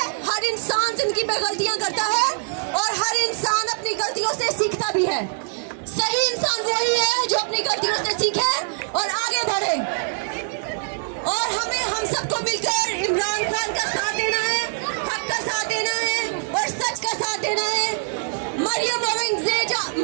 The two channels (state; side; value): silent; left; digital silence